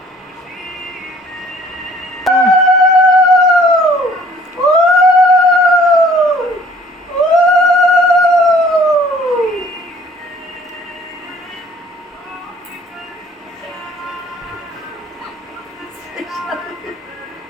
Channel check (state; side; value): normal; both; correlation 0.55